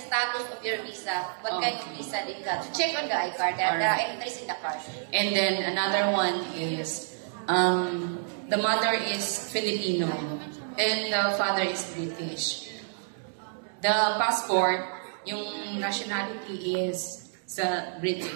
status of your visa. What kind of visa they got. So check on the iCard. There are entries in the card. And then another one is the mother is Filipino and the father is British. The passport, yung nationality is sa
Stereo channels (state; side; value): silent; left; digital silence